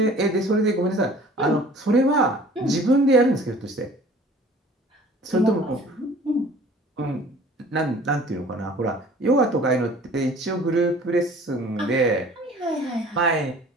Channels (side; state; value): both; normal; correlation 0.48